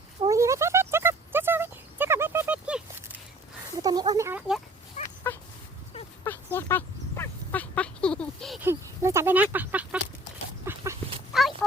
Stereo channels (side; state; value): both; normal; correlation 0.51